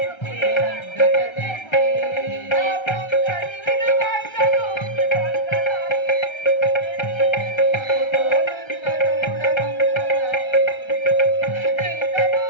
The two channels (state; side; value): late; right; 1.3 ms